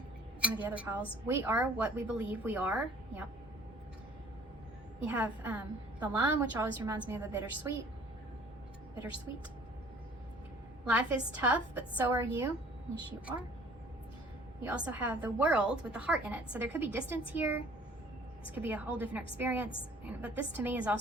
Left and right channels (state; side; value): normal; both; correlation 0.54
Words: one of the other piles. We are what we believe we are. Yep. You have the lime, which always reminds me of a bittersweet. Bittersweet. Life is tough, but so are you. Yes, you are. You also have the world with the heart in it. So there could be distance here. This could be a whole different experience. But this to me is